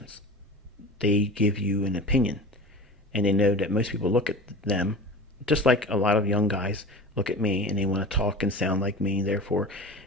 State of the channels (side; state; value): both; normal; correlation 0.34